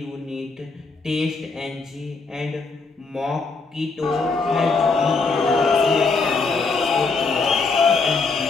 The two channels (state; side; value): quieter; right; 4.2 dB